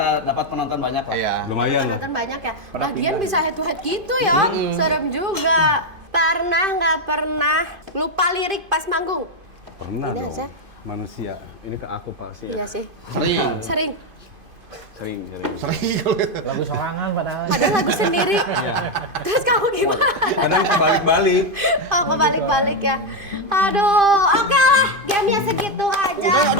dapat penonton banyak lah. Iya. Lumayan lah. Penonton banyak ya. Lagian bisa head to head gitu ya. Serem juga. Pernah nggak pernah lupa lirik pas manggung? Pernah Ini dong. aja. Manusia. Ini ke aku pasti Iya ya. sih. Sering. Sering. Sering. Lagu sorangan padahal. Padahal lagu sendiri. Terus kamu gimana? Kadang kebalik-balik. Oh, kebalik-balik ya. Aduh, oke lah. Gamenya segitu aja.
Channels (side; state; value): left; late; 2.5 ms